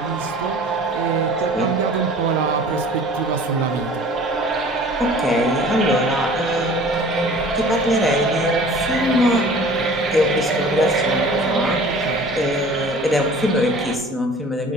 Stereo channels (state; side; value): normal; both; correlation 0.46